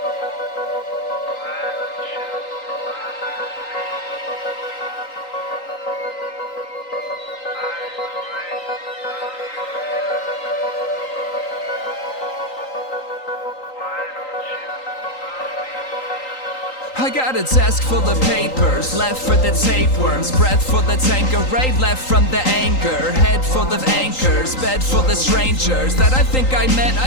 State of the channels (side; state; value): right; late; 3.9 ms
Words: I got a desk full of papers, left for the tapeworms, breath full of Tanqueray, left from the anger, head full of anchors, bed full of strangers that I think I met,